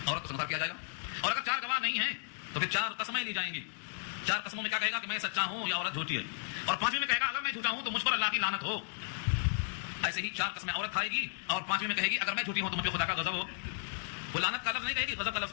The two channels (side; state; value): right; silent; digital silence